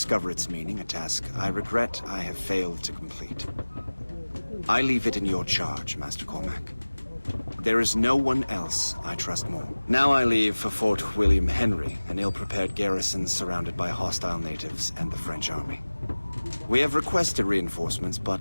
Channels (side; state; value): both; inverted; correlation -1.00